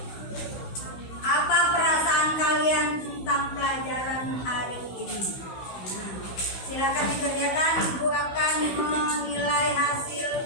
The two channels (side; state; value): right; late; 16 ms